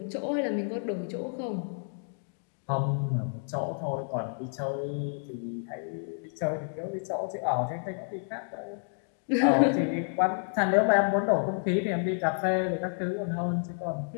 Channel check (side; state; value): right; silent; digital silence